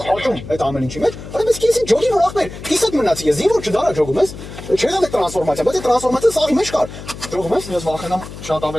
աճում այդ ամեն ինչի մեջ, արա ես կիսին ջոգի որ ախպեր, կիսատ մնացի ես, ինչ որ չդարա ջոգում ես, չէ՞ դա տրանսֆորմացիա, բայց այդ տրանսֆորմացիան սաղի մեջ կար։ Ջոգում ես, Ես վախենամ շատ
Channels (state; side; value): noise; left; hum, 13 dB below the sound